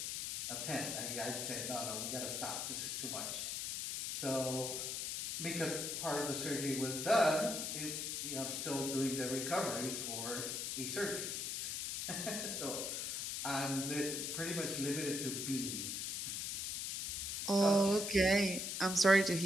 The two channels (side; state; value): left; noise; hiss, 2 dB below the sound